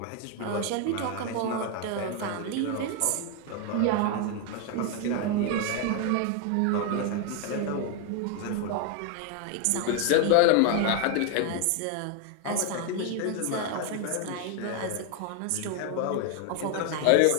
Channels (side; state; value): both; different; correlation 0.01